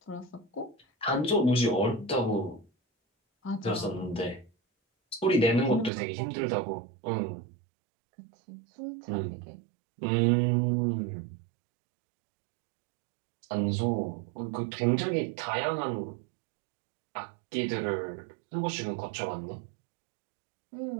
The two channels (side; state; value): left; drops out; at 5.9 s